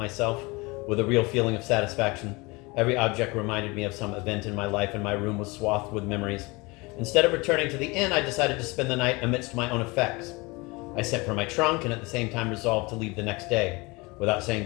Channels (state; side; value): quieter; right; 25.2 dB